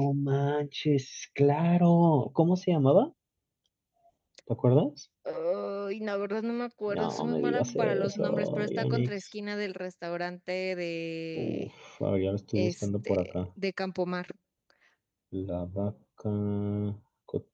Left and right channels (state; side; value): identical; both; correlation 1.00